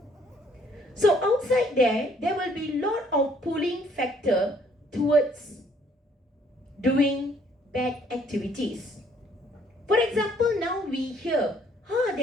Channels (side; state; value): both; normal; correlation 0.64